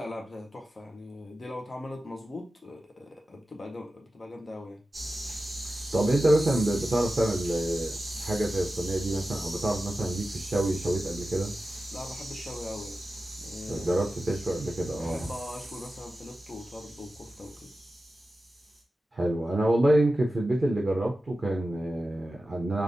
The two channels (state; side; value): normal; both; correlation 0.94